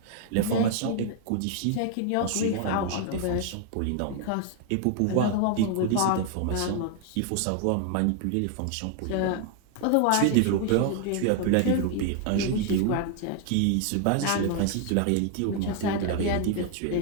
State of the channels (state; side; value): different; both; correlation 0.00